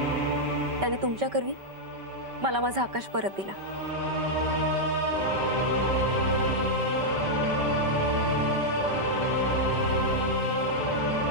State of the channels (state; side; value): late; left; 5.2 ms